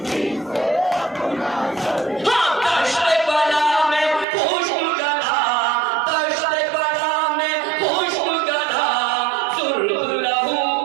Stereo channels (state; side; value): drops out; left; at 4.2 s